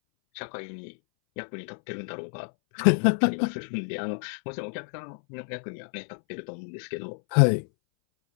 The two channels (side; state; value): right; silent; 59 dB below the other